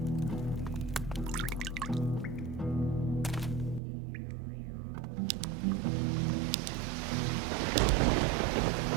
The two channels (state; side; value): drops out; left; at 3.8 s